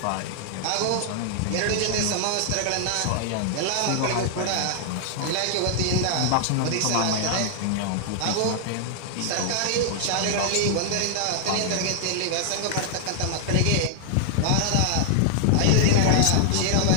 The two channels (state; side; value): different; both; correlation 0.00